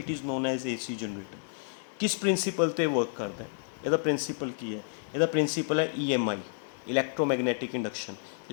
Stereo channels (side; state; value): right; silent; 57 dB below the other